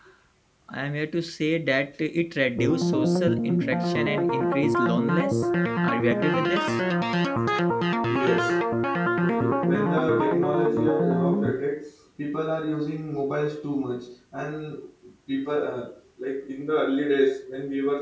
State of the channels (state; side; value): identical; both; correlation 1.00